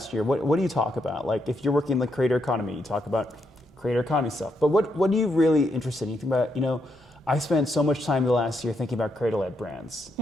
year, what do you talk about? Like if you're working in the creator economy, you talk about creator economy stuff. But what are you really interested in? You think about, I spent so much time the last year thinking about creator-led brands.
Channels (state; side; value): normal; both; correlation 0.79